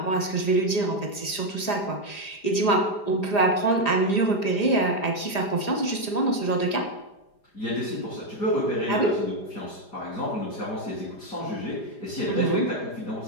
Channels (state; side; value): late; right; 5.0 ms